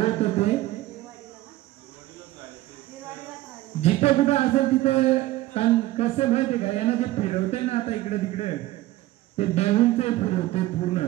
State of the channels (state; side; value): quieter; left; 16.6 dB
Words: होते जिथे कुठं असेल तिथे कसं माहितीये का यांना जे फिरवते ना आता इकडे तिकडे ते देऊनचे फिरवते पूर्ण